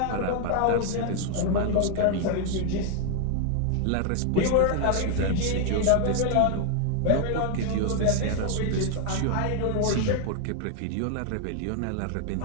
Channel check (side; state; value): both; different; correlation 0.00